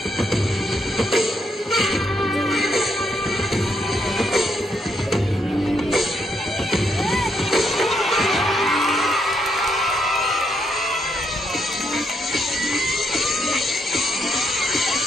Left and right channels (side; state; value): both; normal; correlation 0.76